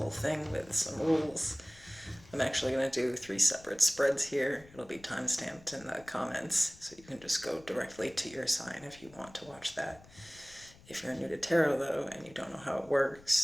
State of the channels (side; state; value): left; noise; rumble, 23 dB below the sound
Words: thing with some rules. I'm actually going to do 3 separate spreads here. It'll be time-stamped in the comments, so you can just go directly to your sign if you want to watch that. If you're new to tarot, though, and you don't know how it